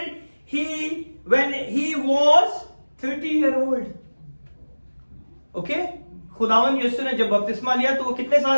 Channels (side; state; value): both; inverted; correlation -1.00